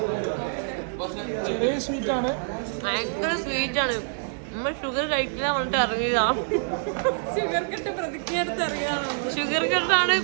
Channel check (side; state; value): left; silent; 61 dB below the other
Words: ചെറിയ സ്വീറ്റ് ആണ്, ഭയങ്കര സ്വീറ്റ് ആണ്. നമ്മൾ ഷുഗർ കഴിക്കില്ല പറഞ്ഞിട്ട് ഇറങ്ങിയതാ. ഷുഗർ കട്ട് പ്രതിജ്ഞ എടുത്ത് അറിയാമോ? ഷുഗർ കട്ടാണ്